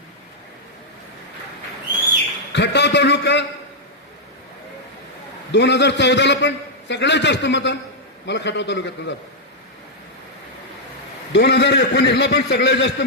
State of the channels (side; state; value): both; normal; correlation -0.05